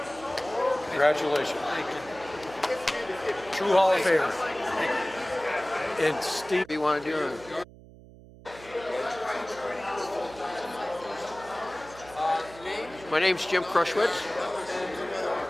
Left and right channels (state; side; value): noise; right; hum, 20 dB below the sound